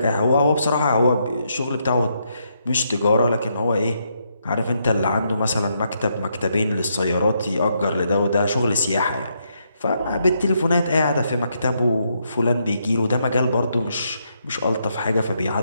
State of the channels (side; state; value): both; inverted; correlation -0.78